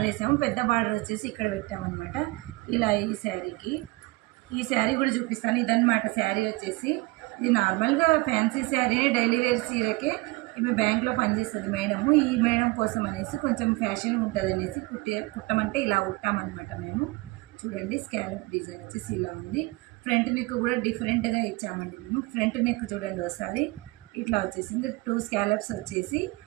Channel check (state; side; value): quieter; left; 23.0 dB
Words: వేసాము. పెద్ద బార్డర్ వచ్చేసి ఇక్కడ పెట్టామన్నమాట. ఇలా ఈ శారీ కూడా చూపిస్తాను. ఇదన్నమాట శారీ వచ్చేసి. ఇది నార్మల్గా ఫ్యాన్సీ శారీని డైలీ వేర్ చీరకే ఈమె బ్యాంక్లో పనిచేస్తుంది మేడము. ఈ మేడం కోసం అనేసి కొంచెం ఫ్యాషన్ ఉంటుంది అనేసి కుట్టమంటే ఇలా కుట్టామన్నమాట మేము. చూడండి స్కాలప్ డిజైన్ వచ్చేసి ఇలా ఉంది. ఫ్రంట్ నెక్ కూడా డిఫరెంట్గా ఇచ్చామండి మేము. ఫ్రంట్ నెక్ చూడండి ఒకసారి ఇట్లా వచ్చేసింది. 2 స్కాలప్స్ వచ్చేసి